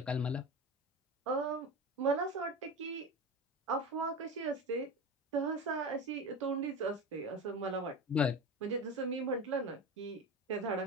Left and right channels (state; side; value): normal; both; correlation 0.26